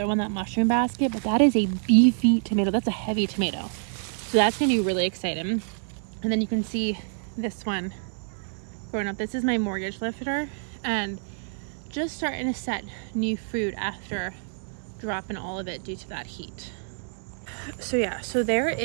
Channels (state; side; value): silent; left; 60 dB below the other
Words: one, that mushroom basket, but that is a beefy tomato. That's a heavy tomato. So that's gonna be really exciting. And then you can see this one growing up. This is my mortgage lifter, and just starting to set new fruit after dropping all of it due to that heat. So yeah, so there